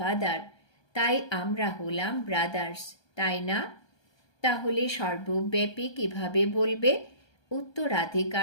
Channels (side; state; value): right; late; 1.3 ms